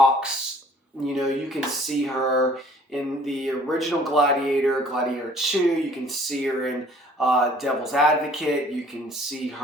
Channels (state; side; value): normal; both; correlation 0.55